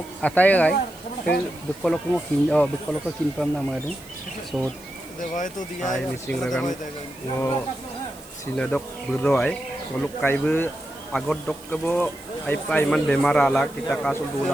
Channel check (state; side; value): noise; right; hiss, 21 dB below the sound